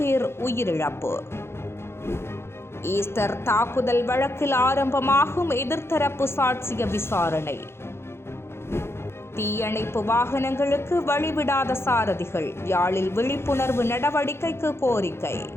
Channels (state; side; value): late; right; 0.12 ms